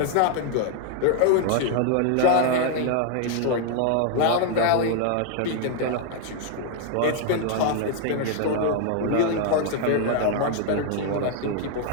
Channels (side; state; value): both; different; correlation 0.00